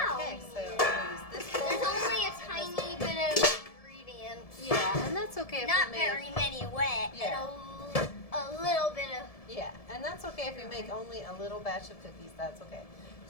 Okay, we so need it. I'll use this bowl. There's only a tiny bit of ingredients. Yeah, and that's okay if Not we make, very many wet. Yeah. And a little bit of. Yeah, and that's okay if we make only a little batch of cookies. That's okay.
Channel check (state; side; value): late; right; 1.7 ms